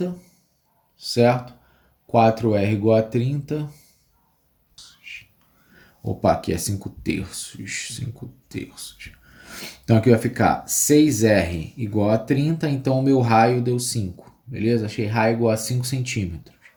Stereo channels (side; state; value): both; identical; correlation 1.00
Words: certo? 4R igual a 30. Opa, aqui é 5/3. 5/3. Então aqui vai ficar 6R igual a 30, então o meu raio deu 5. Beleza? Achei raio igual a 5 centímetros.